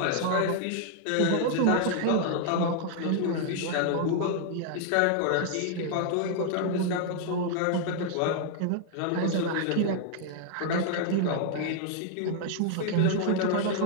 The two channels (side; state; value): both; different; correlation 0.00